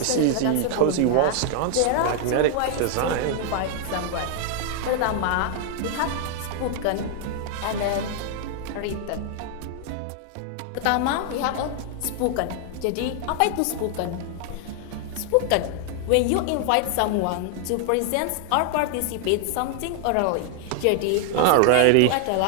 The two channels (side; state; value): both; different; correlation 0.00